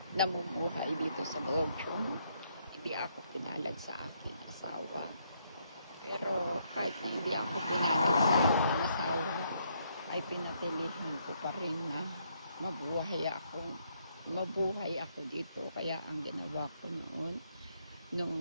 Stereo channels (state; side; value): inverted; both; correlation -0.73